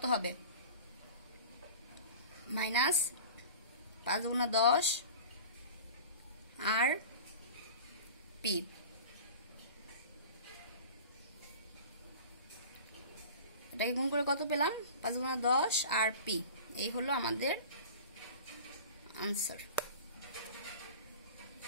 হবে মাইনাস 5 2 10 আর p। এটাকে গুণ করে কত পেলাম 5 2 10 আর p। এই হলো আমাদের আনসার।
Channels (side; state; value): both; inverted; correlation -0.38